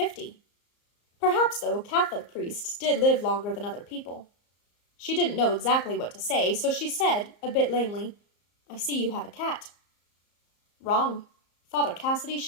Perhaps, though, Catholic priests did live longer than other people. She didn't know exactly what to say, so she said, a bit lamely, "I see you have a cat." "Wrong." Father Cassidy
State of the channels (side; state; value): right; late; 34 ms